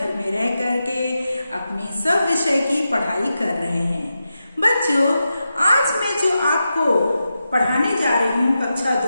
में रह करके अपनी सब विषय की पढ़ाई कर रहे हैं। बच्चों, आज मैं जो आपको पढ़ाने जा रही हूँ कक्षा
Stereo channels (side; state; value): both; inverted; correlation -0.89